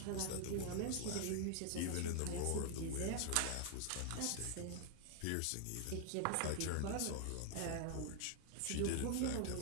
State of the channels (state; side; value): different; both; correlation 0.00